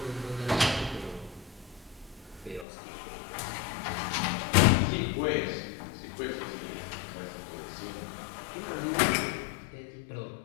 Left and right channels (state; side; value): drops out; right; at 2.7 s